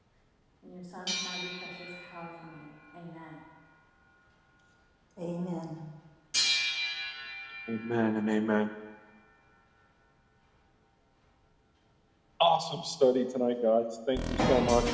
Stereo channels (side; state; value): both; identical; correlation 1.00